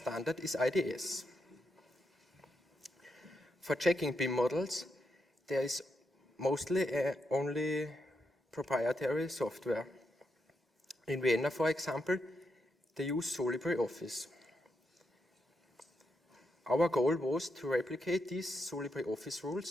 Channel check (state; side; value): normal; both; correlation 0.83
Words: is IDS. For checking BIM models, there is mostly only proprietary software. In Vienna, for example, they use LibreOffice. Our goal was to replicate these LibreOffice